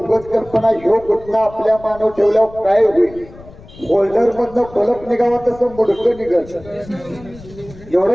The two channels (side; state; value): left; noise; rumble, 20 dB below the sound